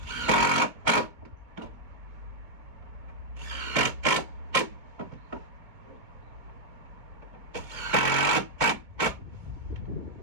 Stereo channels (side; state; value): left; late; 2.2 ms